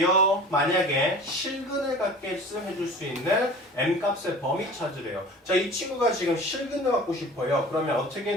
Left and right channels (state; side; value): normal; both; correlation 0.41